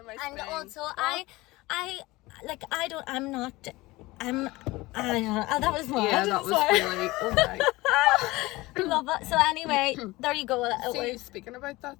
my And spine. also I that was mad. Yeah, that was Sorry. really. Oh my. Love it. So anyway, there you go. See, speaking about that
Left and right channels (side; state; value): right; quieter; 20.6 dB